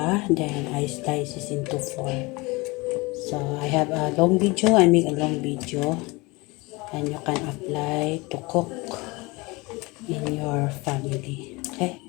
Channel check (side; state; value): right; quieter; 24.6 dB